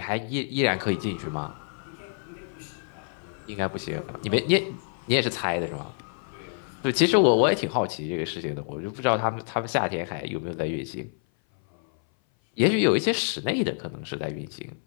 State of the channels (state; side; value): silent; right; 57 dB below the other